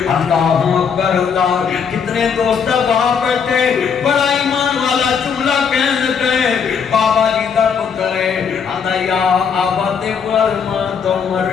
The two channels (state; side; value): quieter; right; 6.6 dB